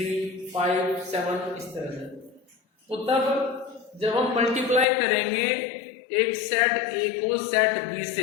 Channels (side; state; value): right; drops out; at 4.9 s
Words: 5, 7, इस तरह से। तो तब जब हम मल्टीप्लाई करेंगे एक सेट ए को सेट बी